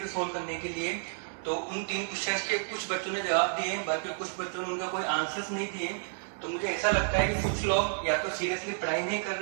थे सोल्व करने के लिए। तो उन 3 क्वेश्चंस के कुछ बच्चों ने जवाब दिए, बाकी कुछ बच्चों ने उनका कोई आंसर्स नहीं दिए। तो मुझे ऐसा लगता है कि कुछ लोग या तो सीरियसली पढ़ाई नहीं कर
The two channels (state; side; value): silent; left; 57 dB below the other